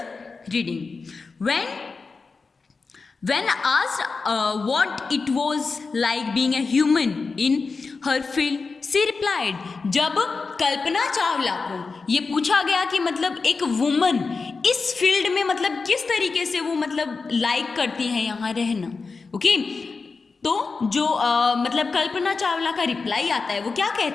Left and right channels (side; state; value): right; quieter; 4.4 dB